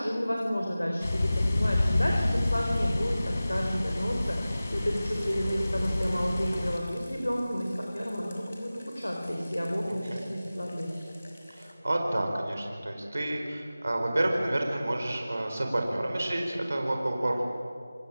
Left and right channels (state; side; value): inverted; both; correlation -0.96